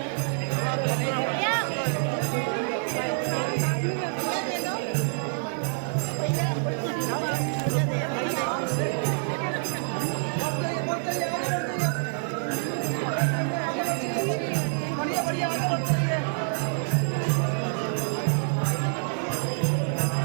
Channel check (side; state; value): left; silent; digital silence